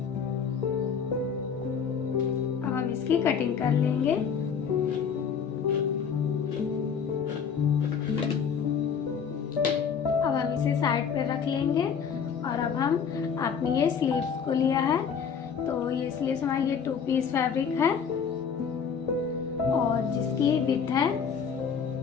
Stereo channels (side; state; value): right; quieter; 6.8 dB